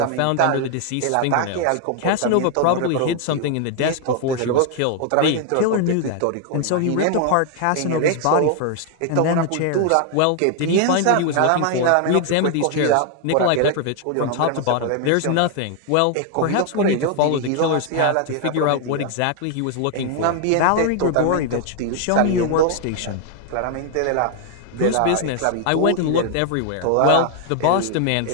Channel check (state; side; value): different; both; correlation 0.00